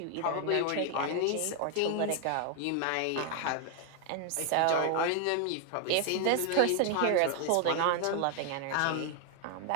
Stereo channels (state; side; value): different; both; correlation 0.00